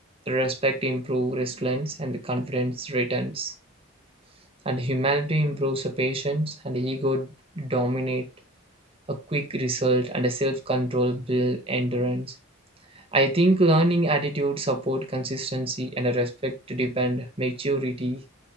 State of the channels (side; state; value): both; normal; correlation 0.44